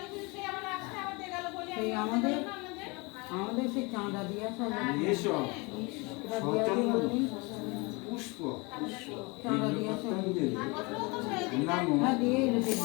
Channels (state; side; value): quieter; right; 27.7 dB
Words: সেই আমাদের সেই চাঁদা দিয়া সব এসব সচন্দন পুষ্প চাঁদা দিয়া সব নাম হ্যাঁ দিয়েই দেবে